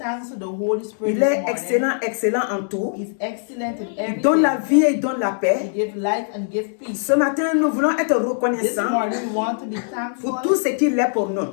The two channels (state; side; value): silent; right; digital silence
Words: to the Holy Spirit Il this est morning. excellent, excellent en tout. He's excellent in Il everything. donne la vie et il donne la He paix. gives life and gives peace. Ce matin, nous voulons être This reconnaissants morning we want to be pour tout thankful ce qu'il est pour nous.